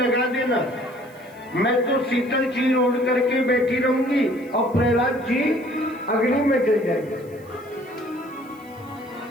देना, मैं तो शीतल चीर ओढ़ करके बैठी रहूंगी और प्रहलाद जी अग्नि में जल जाएंगे।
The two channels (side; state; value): right; noise; hiss, 28 dB below the sound